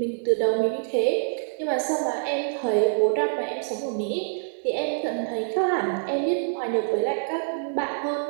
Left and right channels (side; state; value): left; silent; digital silence